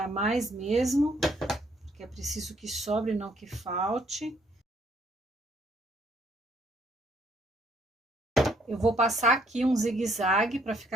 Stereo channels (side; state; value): both; normal; correlation 0.67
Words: mais mesmo, porque é preciso que sobre, não que falte. Eu vou passar aqui um zigue-zague para